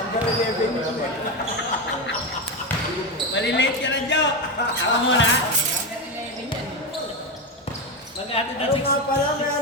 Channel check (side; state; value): both; normal; correlation 0.14